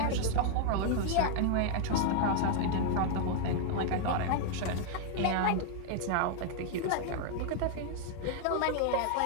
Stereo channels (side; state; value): both; different; correlation 0.00